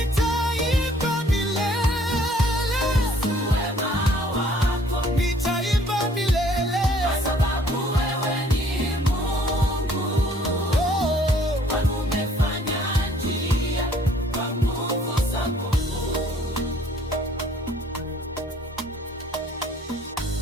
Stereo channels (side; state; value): both; normal; correlation 0.59